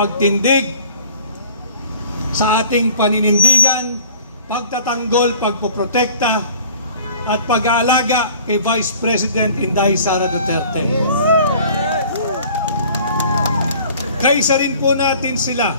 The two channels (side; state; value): both; inverted; correlation -0.49